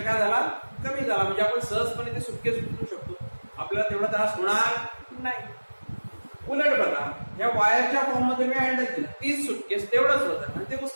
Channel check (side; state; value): both; inverted; correlation -1.00